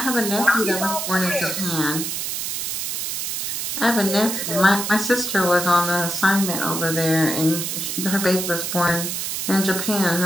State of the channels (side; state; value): right; noise; hiss, 3 dB below the sound